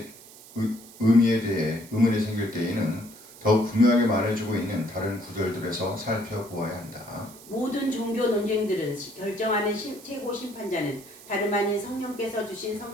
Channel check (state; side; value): noise; right; hiss, 20 dB below the sound